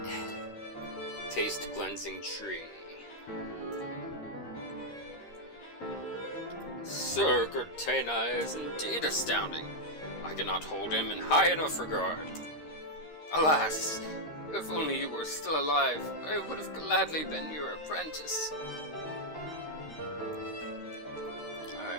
Taste cleansing tree. Sir Gertena is indeed astounding. I cannot hold him in high enough regard. Alas, if only you were still alive, I would have gladly been your apprentice.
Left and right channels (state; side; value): late; right; 13 ms